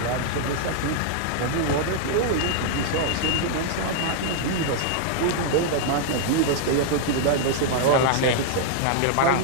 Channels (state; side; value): different; both; correlation -0.01